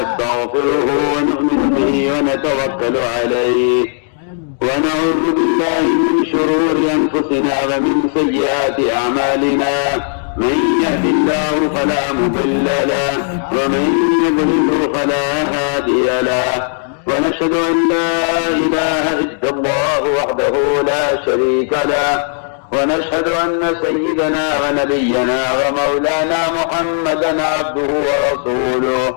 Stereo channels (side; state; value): right; silent; 69 dB below the other